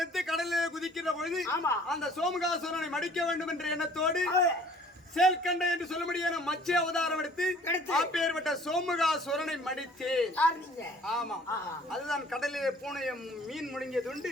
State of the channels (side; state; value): both; normal; correlation 0.53